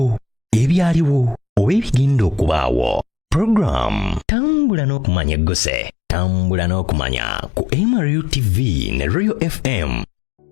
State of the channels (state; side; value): drops out; right; at 4.2 s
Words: ebyaliwo, oba ebigenda okubaawo. Program Tambula n'okumanya eggose. Tambula n'okumanya ku MRU TV ne Royal FM.